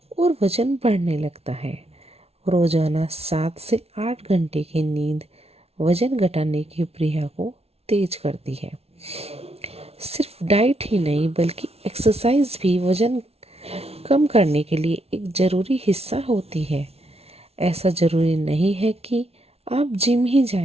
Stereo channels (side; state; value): left; late; 0.30 ms